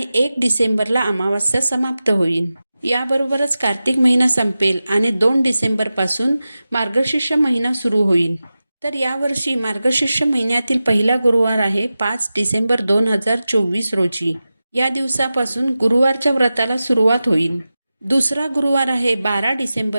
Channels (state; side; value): inverted; both; correlation -0.94